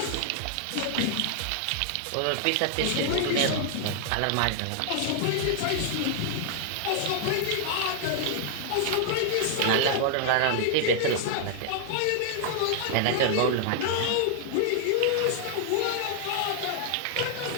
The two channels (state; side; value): different; both; correlation 0.00